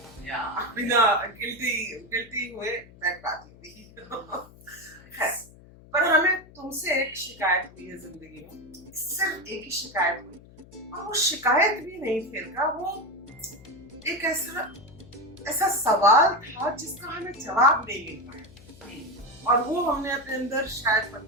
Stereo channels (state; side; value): noise; left; hum, 22 dB below the sound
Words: या बिना गिल्टी हुए बैठ पाती हुई। खैर, पर हमें तुमसे एक शिकायत हुई है जिंदगी में, सिर्फ एक ही शिकायत हुई, और वो शिकायत भी नहीं थी का, वो एक ऐसा सवाल था जिसका हमें जवाब नहीं मिल पाया, और वो हमने अपने अंदर शायद